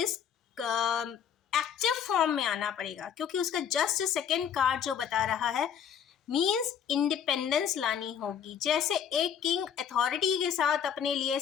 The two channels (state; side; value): quieter; right; 8.3 dB